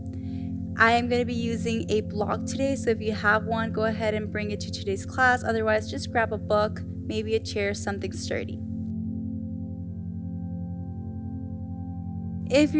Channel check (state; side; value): identical; both; correlation 1.00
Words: I am going to be using a block today, so if you have one, go ahead and bring it to today's class. Otherwise, just grab a book, maybe a chair, something sturdy. If